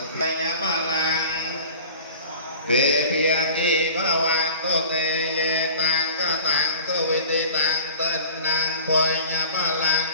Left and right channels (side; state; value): both; inverted; correlation -0.42